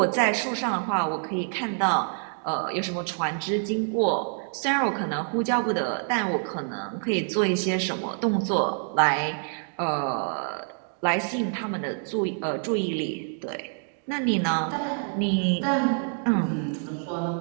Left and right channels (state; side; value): silent; left; 58 dB below the other